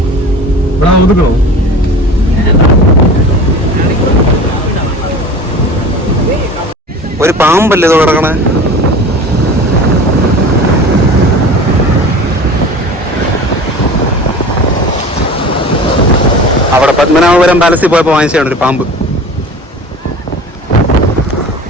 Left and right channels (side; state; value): both; normal; correlation 0.38